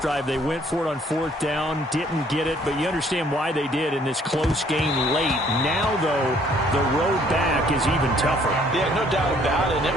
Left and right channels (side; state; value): both; normal; correlation 0.62